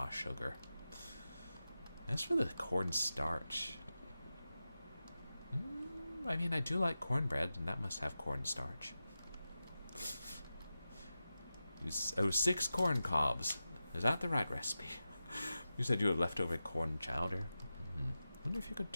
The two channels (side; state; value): both; inverted; correlation -0.93